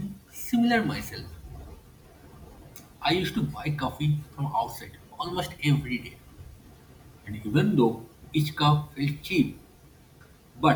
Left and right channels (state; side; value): identical; both; correlation 1.00